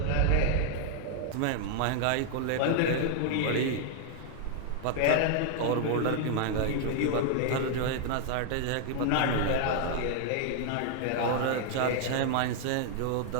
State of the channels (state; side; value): different; both; correlation 0.00